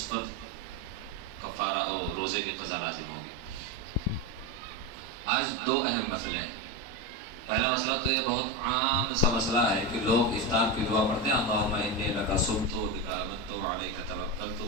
پر کفارہ اور روزے کی قضا لازم ہوگی۔ آج 2 اہم مسئلے ہیں۔ پہلا مسئلہ تو یہ بہت عام سا مسئلہ ہے کہ لوگ افطار کی دعا پڑھتے ہیں، اللہم انی لک صمت بک آمنت علیک توکلت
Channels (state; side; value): normal; both; correlation 0.16